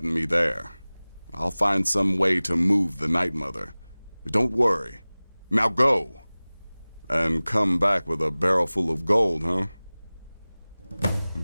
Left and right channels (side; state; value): both; inverted; correlation -0.99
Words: and me there. I'll find some way to move the Night Mother. Don't worry. Now go. And come back with a barrel full of gold, huh?